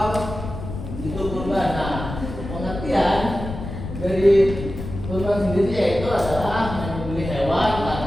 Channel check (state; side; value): noise; left; rumble, 8 dB below the sound